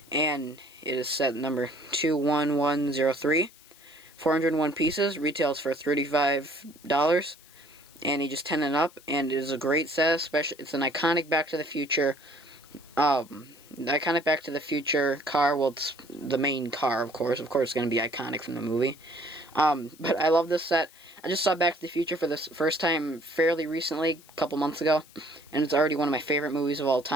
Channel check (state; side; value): noise; left; hiss, 24 dB below the sound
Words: and it is set number 21103. 401 pieces, retails for $35, and you just 10 and up, and it is a great set. Especially, it's an iconic Back to the Future iconic Back to the Future car. Well, it's the main car, of course. Of course, it's going to be iconic from the movie. But I love this set. I just saw Back to the Future for the first time fairly recently, a couple months ago. And it's already one of my favorite movies of all